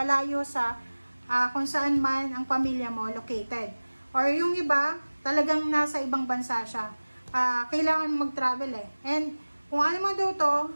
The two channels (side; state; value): both; inverted; correlation -1.00